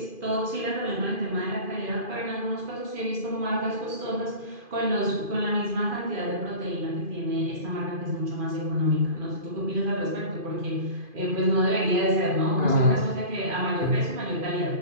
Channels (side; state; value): left; late; 2.5 ms